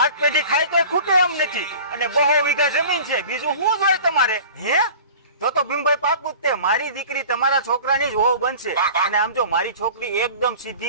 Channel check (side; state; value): both; inverted; correlation -0.42